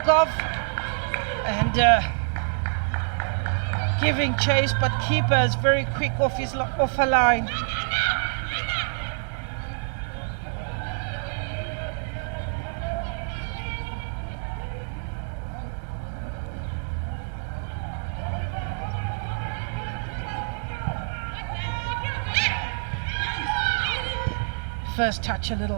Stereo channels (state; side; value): silent; left; digital silence